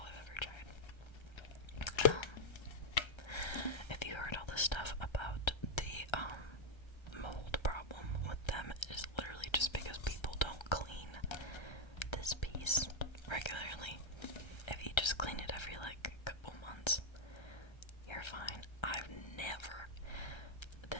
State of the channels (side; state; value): right; late; 1.3 ms